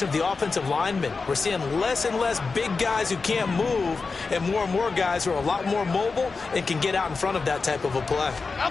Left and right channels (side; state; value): right; quieter; 4.4 dB